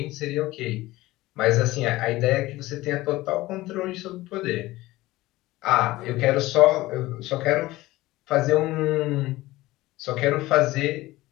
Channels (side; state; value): right; quieter; 18.2 dB